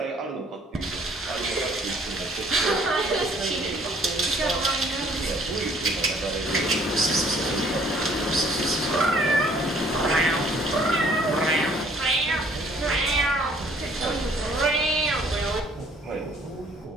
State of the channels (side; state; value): both; normal; correlation 0.60